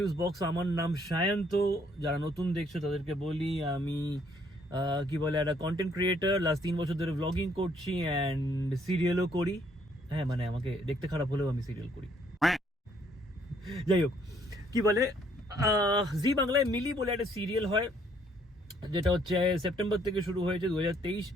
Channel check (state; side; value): normal; both; correlation 0.66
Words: box. আমার নাম সায়ন্ত। যারা নতুন দেখছো তাদেরকে বলি আমি কি বলে একটা কন্টেন্ট ক্রিয়েটার। লাস্ট 3 বছর ধরে ব্লগিং করছি অ্যান্ড সিরিয়ালও করি। হ্যাঁ, মানে আমাকে দেখতে খারাপ হলেও আমি সিরিয়াল করি। যাই হোক, কি বলে জি বাংলায় মিলি বলে একটা সিরিয়াল হয়, যেটা হচ্ছে সেপ্টেম্বর থেকে শুরু হয়েছে 2023।